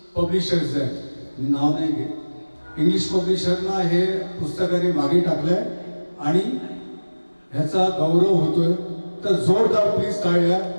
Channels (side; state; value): both; inverted; correlation -1.00